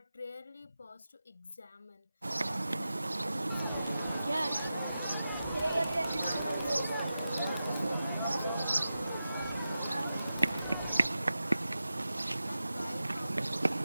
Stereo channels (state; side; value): inverted; both; correlation -0.92